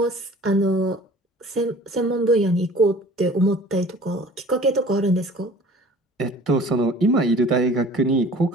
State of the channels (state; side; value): normal; both; correlation 0.47